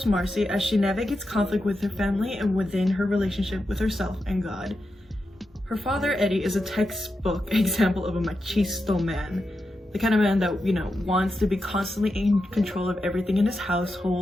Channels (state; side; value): normal; both; correlation 0.88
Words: Marcy as she navigates conflict with her family and within her relationship with herself and God. Her father, Eery, is a textbook example of a machisto man, the kind of man that, wants to be constantly in control of everything in his